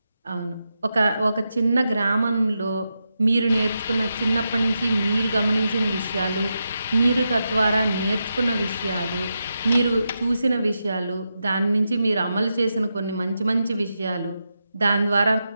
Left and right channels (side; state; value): both; inverted; correlation -0.88